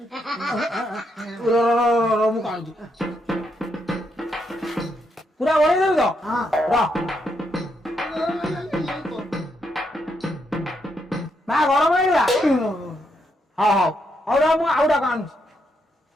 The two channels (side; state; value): both; normal; correlation 0.79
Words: ମୁଁ କାଣୁଛି ପୁରା ଓଳେଇ ଦେବି ତ ମା ଗରମ ହେଇଗଲା। ହଉ ହଉ ହଉ ର ମୁଁ ଆଉ ଡାକ ଆଣୁଛି।